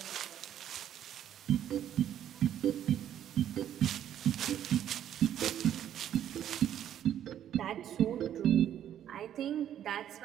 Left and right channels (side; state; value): left; quieter; 10.6 dB